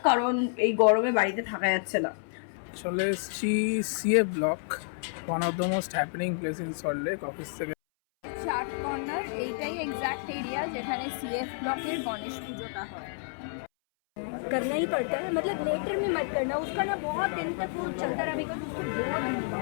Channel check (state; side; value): silent; right; 58 dB below the other